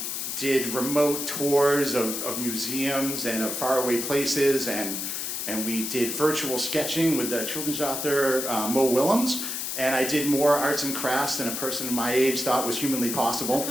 did remote tours of museums and of faraway places, and we did virtual sketching with the children's author Mo Willems, and I did more arts and crafts than a person my age thought was humanly possible.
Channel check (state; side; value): noise; left; hiss, 3 dB below the sound